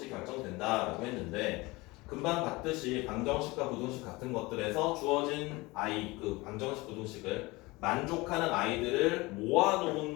결정된다라고 했는데 금방 봤듯이 방정식과 부등식 같은 것들에서 주어진 그 방정식 부등식을 만족하는 아이들을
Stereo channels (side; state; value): right; quieter; 22.7 dB